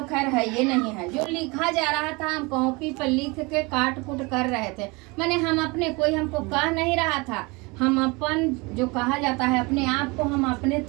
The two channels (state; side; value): quieter; left; 26.3 dB